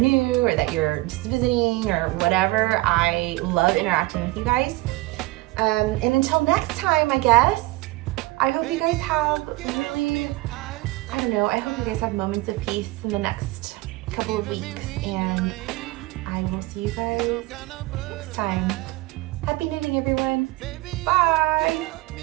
or that you're just visiting or whatever. I love interacting with you guys. And until next time, I guess, I hope you guys have really, I hope you guys have moments of peace in the next couple of weeks, and I will see you guys next time. Happy knitting, everyone. Bye.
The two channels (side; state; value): left; quieter; 20.5 dB